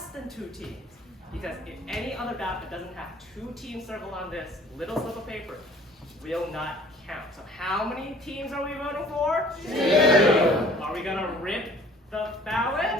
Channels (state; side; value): normal; both; correlation 0.53